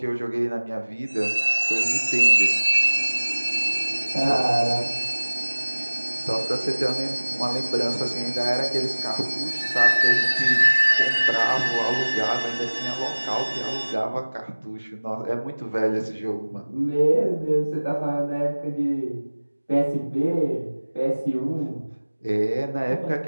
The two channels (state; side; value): inverted; both; correlation -1.00